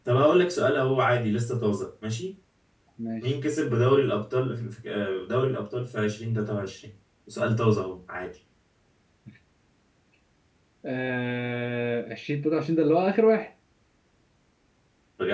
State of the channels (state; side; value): identical; both; correlation 1.00